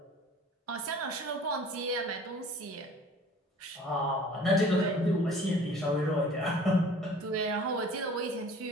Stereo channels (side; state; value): both; normal; correlation 0.47